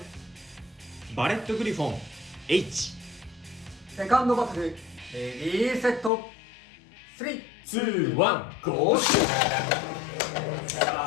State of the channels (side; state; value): right; drops out; at 6.1 s